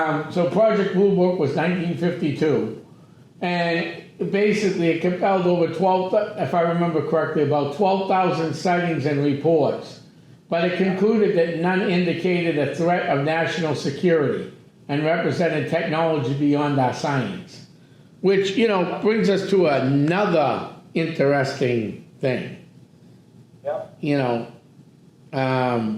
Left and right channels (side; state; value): both; identical; correlation 1.00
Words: So Project Blue Book was 1952, and basically it compelled over 12, if I remember correctly, about 12,000 sightings and reports. But it concluded that none indicated a threat of national security and represented technology beyond our science. Which, you know, brings us to another interesting thing. Yep. You know,